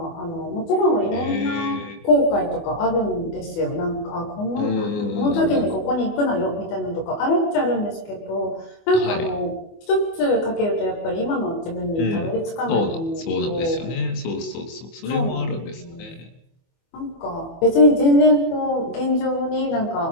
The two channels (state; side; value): late; right; 24 ms